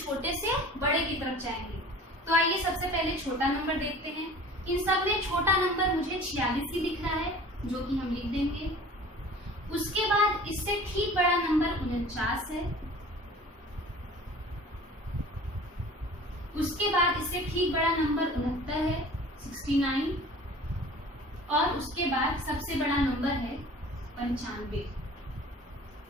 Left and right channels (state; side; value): normal; both; correlation 0.44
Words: से बड़े की तरफ जाएंगे। तो आइए सबसे पहले छोटा नंबर देखते हैं। इन सब में छोटा नंबर मुझे 46 ही दिख रहा है, जो कि हम लिख देंगे। उसके बाद इससे ठीक बड़ा नंबर 49 है। उसके बाद इससे ठीक बड़ा नंबर 69 है, 69। और उसके बाद सबसे बड़ा नंबर है 95।